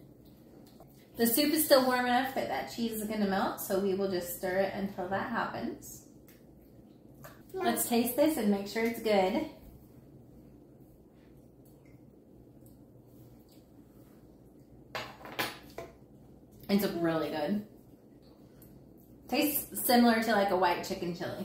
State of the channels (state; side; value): identical; both; correlation 1.00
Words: The soup is still warm enough that that cheese is going to melt, so we will just stir it until that happens. Let's taste this and make sure it's good. It's really good. Tastes similar to like a white chicken